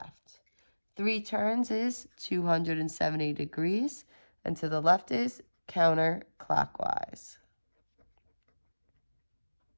3 turns is 270 degrees, and to the left is counterclockwise.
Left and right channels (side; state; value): both; inverted; correlation -1.00